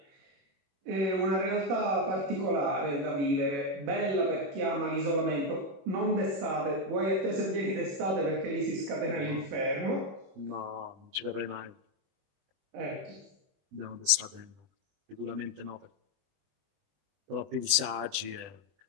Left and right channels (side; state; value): left; late; 20 ms